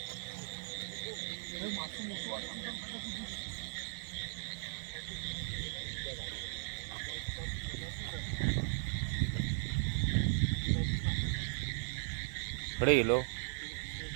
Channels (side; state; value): left; silent; 53 dB below the other